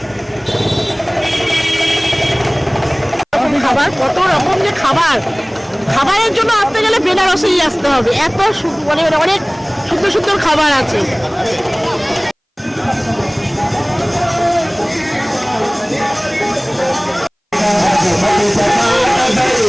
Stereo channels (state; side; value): identical; both; correlation 1.00